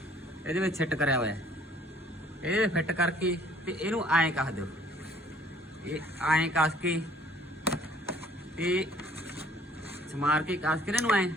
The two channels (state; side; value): normal; both; correlation 0.58